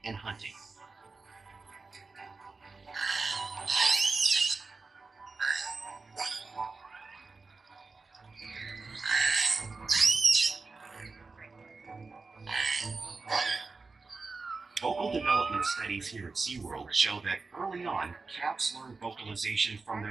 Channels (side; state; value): left; quieter; 4.1 dB